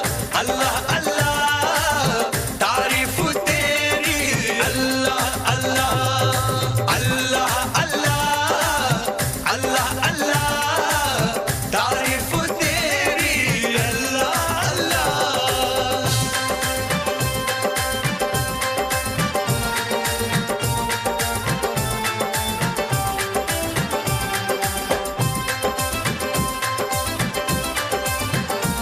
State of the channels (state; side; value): identical; both; correlation 1.00